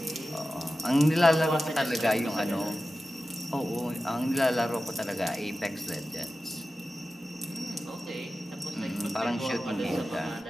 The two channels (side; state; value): both; normal; correlation 0.94